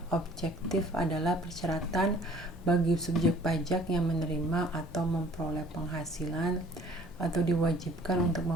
objektif? Adalah persyaratan bagi subjek pajak yang menerima atau memperoleh penghasilan atau diwajibkan untuk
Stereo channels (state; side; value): normal; both; correlation 0.53